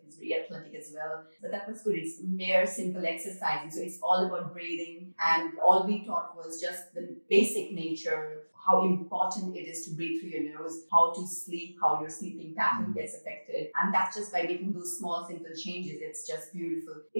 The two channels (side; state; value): both; inverted; correlation -1.00